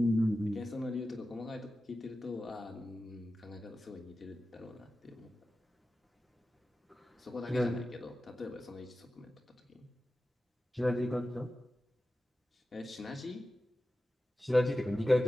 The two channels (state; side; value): normal; both; correlation 0.94